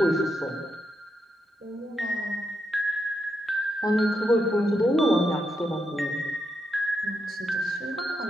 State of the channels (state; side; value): normal; both; correlation 0.83